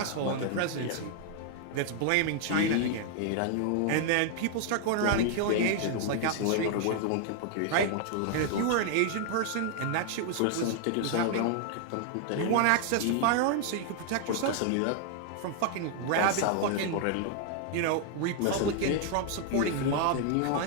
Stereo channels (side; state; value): both; different; correlation 0.00